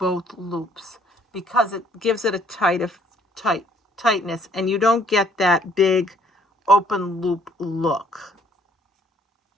loops, because it gives it a tightness, and you don't get that big open loop look.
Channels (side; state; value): both; normal; correlation 0.62